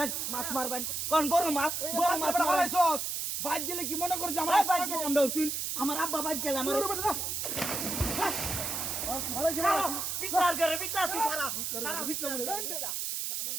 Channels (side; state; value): right; noise; hiss, 2 dB below the sound